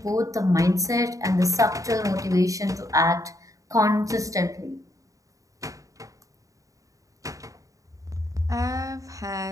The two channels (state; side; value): late; left; 0.16 ms